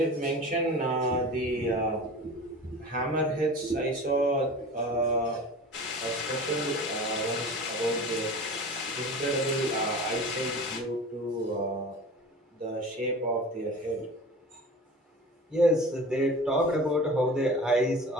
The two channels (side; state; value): both; normal; correlation 0.37